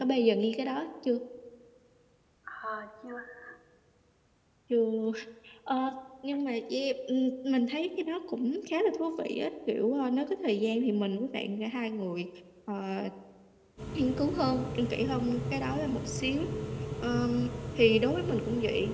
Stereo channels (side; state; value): both; identical; correlation 1.00